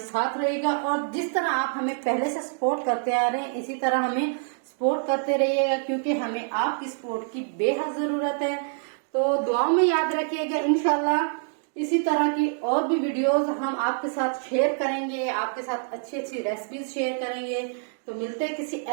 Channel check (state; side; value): silent; left; digital silence